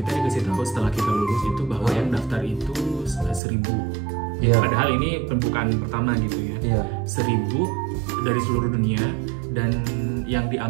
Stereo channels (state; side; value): drops out; left; at 3.4 s